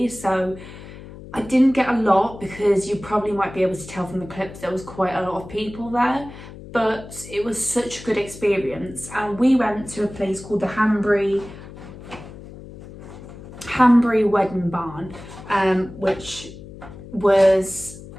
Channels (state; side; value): noise; left; hum, 15 dB below the sound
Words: So I didn't get a lot, because you probably might be able to tell from the clips there was quite a lot of people there, but it was such a good experience. And we went to a place called the Hanbury Wedding Barn, which it's